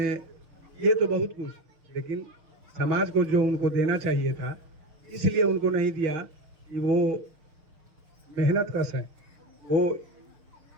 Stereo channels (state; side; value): late; left; 6.5 ms